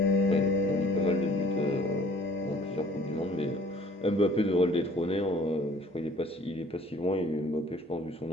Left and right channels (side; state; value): both; normal; correlation 0.54